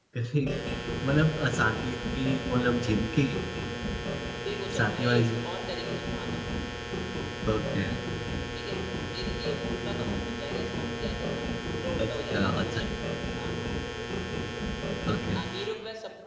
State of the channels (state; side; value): identical; both; correlation 1.00